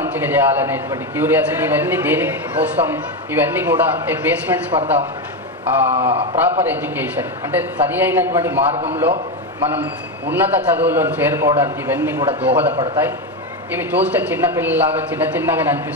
చేయాలనేటువంటి క్యూరియాసిటీ, ఇవన్నీ దేనికి కోసం, ఇవన్నీ కూడా a basements for the proper education. అంటే సరి అయినటువంటి మార్గంలో మనం ఉన్నత చదువులను చేరుకోవడానికి ఇవన్నీ కూడా దోహదపడతాయి. ఇవి చూస్తే చిన్నపిల్లలాగా చిన్నగా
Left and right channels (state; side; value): normal; both; correlation 0.11